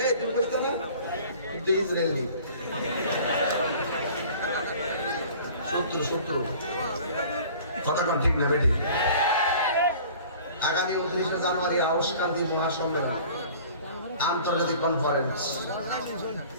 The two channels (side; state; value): both; inverted; correlation -0.46